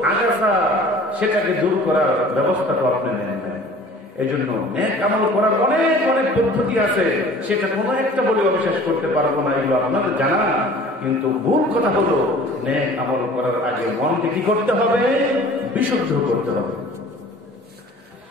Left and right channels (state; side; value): normal; both; correlation 0.47